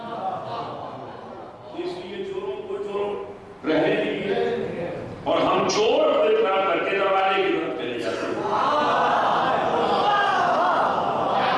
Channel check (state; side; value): identical; both; correlation 1.00